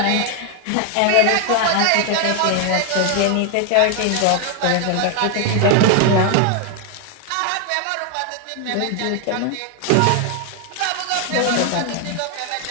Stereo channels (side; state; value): both; different; correlation 0.00